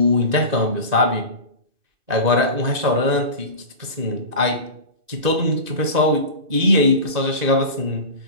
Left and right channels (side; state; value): left; late; 2.6 ms